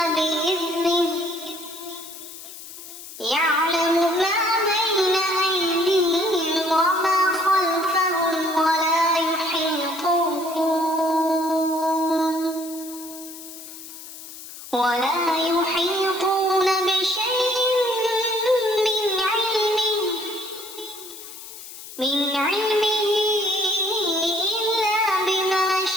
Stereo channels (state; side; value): noise; left; hiss, 14 dB below the sound